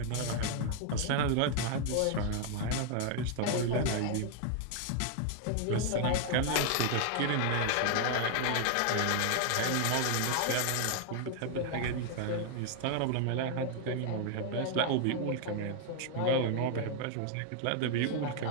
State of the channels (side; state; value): both; different; correlation 0.00